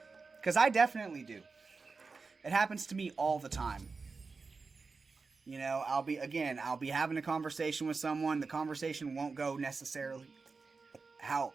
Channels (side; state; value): left; quieter; 4.4 dB